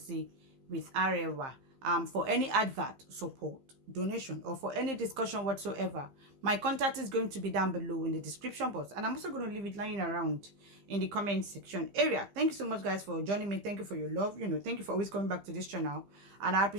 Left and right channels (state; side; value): late; left; 15 ms